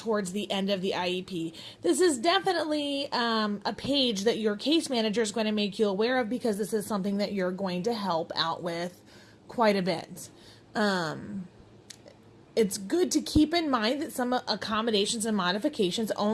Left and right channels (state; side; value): identical; both; correlation 1.00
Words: the end of the IEP. This is definitely a page that your case manager is going to make you aware of because this is something that you're going to help out with quite a bit. It's good to keep in mind that some accommodations and modifications